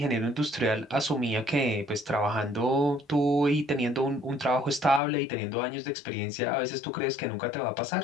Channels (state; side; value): drops out; right; at 5.0 s